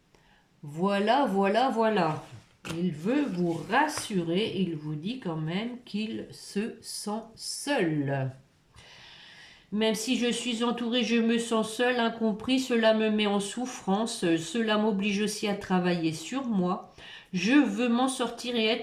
Voilà, voilà, voilà. Il veut vous rassurer, il vous dit quand même qu'il se sent seul. Même si je suis entourée, je me sens seule, incompris, cela me met en souffrance, cela m'oblige aussi à travailler sur moi. Je veux m'en sortir et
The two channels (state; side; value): identical; both; correlation 1.00